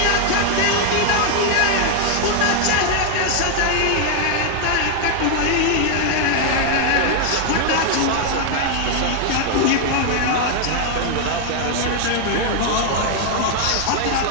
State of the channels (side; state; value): both; different; correlation 0.00